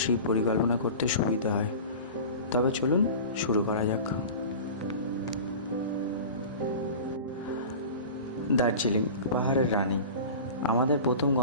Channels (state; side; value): inverted; both; correlation -0.35